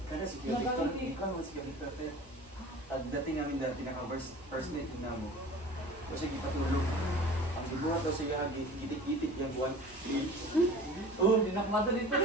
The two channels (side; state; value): both; normal; correlation 0.41